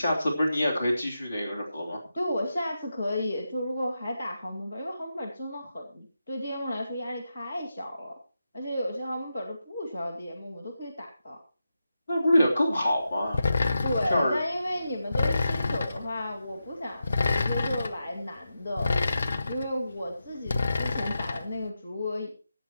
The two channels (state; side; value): inverted; both; correlation -0.89